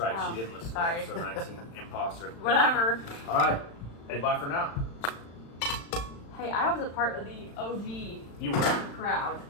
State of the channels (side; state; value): right; late; 35 ms